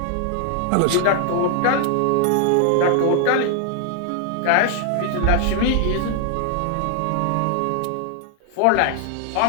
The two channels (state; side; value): different; both; correlation 0.00